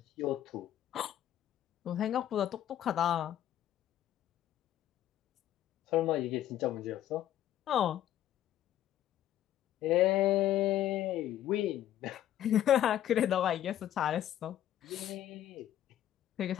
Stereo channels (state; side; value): quieter; right; 11.9 dB